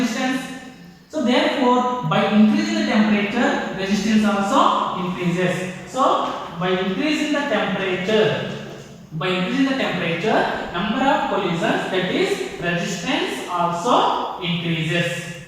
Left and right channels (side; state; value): both; identical; correlation 1.00